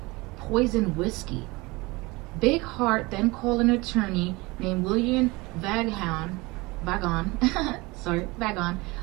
poisoned whiskey. Bighart then called an attorney named William Vagon.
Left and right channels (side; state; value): left; quieter; 23.6 dB